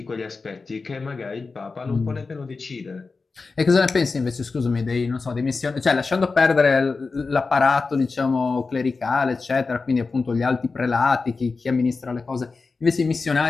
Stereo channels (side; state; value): right; quieter; 4.2 dB